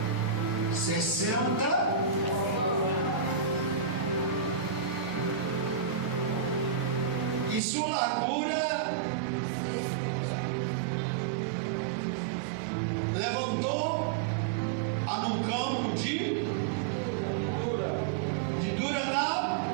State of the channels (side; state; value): left; drops out; at 7.6 s